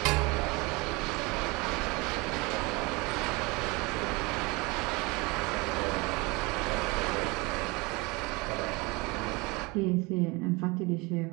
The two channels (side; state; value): left; quieter; 25.7 dB